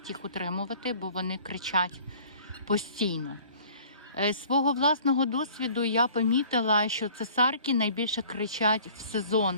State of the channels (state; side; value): inverted; both; correlation -0.50